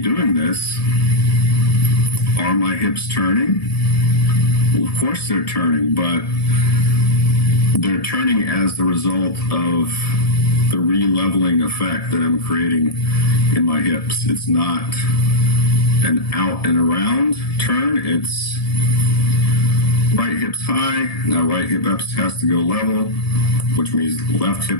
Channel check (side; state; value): right; late; 1.7 ms